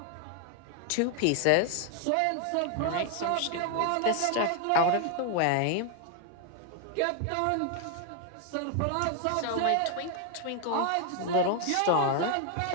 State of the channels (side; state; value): both; different; correlation 0.00